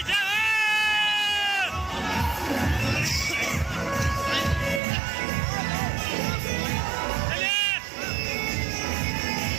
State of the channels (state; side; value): drops out; left; at 4.8 s